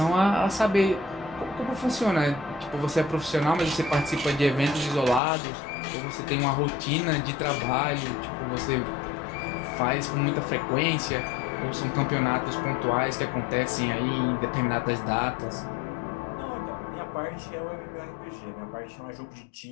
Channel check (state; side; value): drops out; right; at 5.2 s